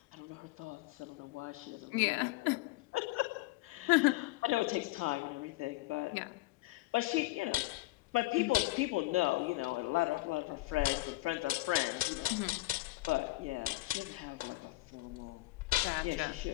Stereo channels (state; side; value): quieter; right; 20.0 dB